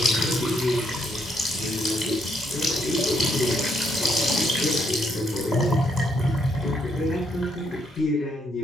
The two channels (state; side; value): normal; both; correlation 0.73